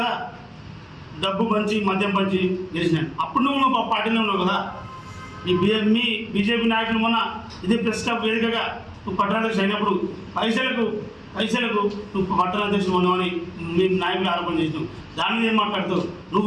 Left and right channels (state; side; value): identical; both; correlation 1.00